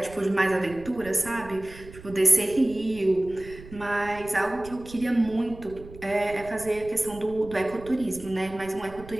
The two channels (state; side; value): noise; right; rumble, 17 dB below the sound